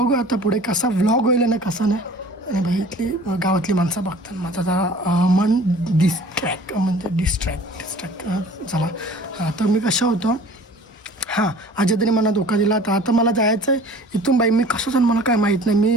आता पुढे कसा व्लॉग होईल ना कसा नाही. आणि भाई इथली गावातली माणसं बघतात, माझं जरा मन डिस्ट्रॅक्ट झाला. तर मी कसं होतो, हां आजी तरी मला धोका दिला. तर आता मला जायचं आहे इथून. बाई मी कसं जाण मला काय माहीत नाही, मी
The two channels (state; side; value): normal; both; correlation 0.47